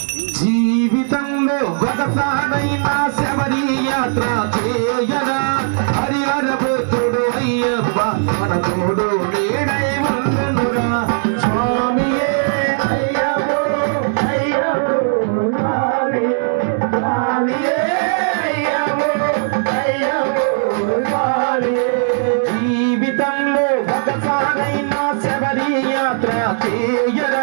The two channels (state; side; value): silent; left; digital silence